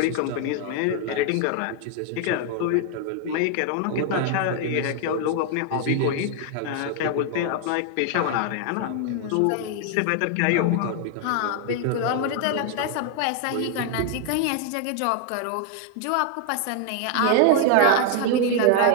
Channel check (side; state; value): both; different; correlation 0.00